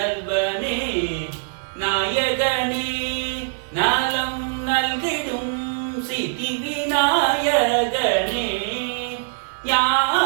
நாயகனே நலம் நல்கிடும் சித்தி விநாயகனே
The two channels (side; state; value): left; silent; digital silence